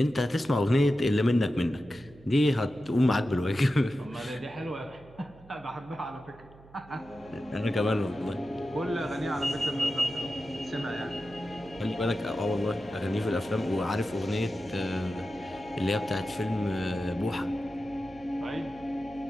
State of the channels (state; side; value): noise; right; hum, 23 dB below the sound